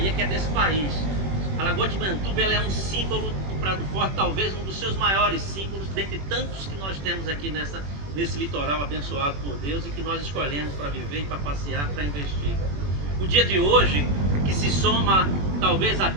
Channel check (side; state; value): left; late; 21 ms